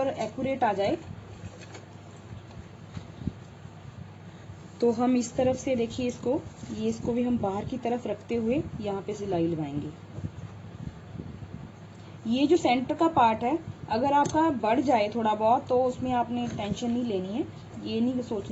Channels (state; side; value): identical; both; correlation 1.00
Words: एक्यूरेट आ जाए। तो हम इस तरफ से देखिए इसको भी हम बाहर की तरफ रखते हुए यहाँ पे सिलाई लगाएंगे। ये जो सेंटर का पार्ट है, अगर आपका बढ़ जाए थोड़ा बहुत तो उसमें आपने टेंशन नहीं लेनी है। ये नहीं